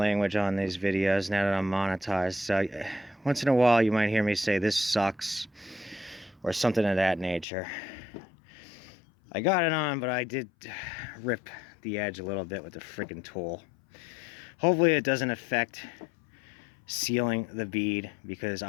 on these videos now that I'm monetized. So once in a while, you might hear me say, "This sucks," or something of that nature. I got it on, but I did rip the edge a little bit with the freaking tool. Hopefully it doesn't affect sealing the bead, because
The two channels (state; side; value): drops out; right; at 7.5 s